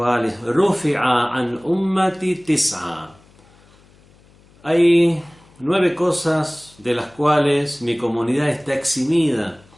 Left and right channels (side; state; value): left; noise; hum, 29 dB below the sound